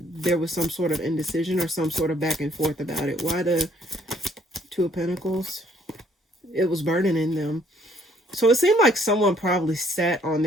there was some sort of indecision or some sort of back and forth about it. Why the Two of Pentacles? It was burdening them. So it seemed like someone probably sat on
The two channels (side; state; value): both; normal; correlation 0.65